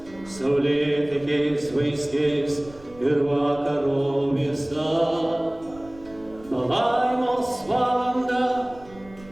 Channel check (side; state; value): right; noise; rumble, 22 dB below the sound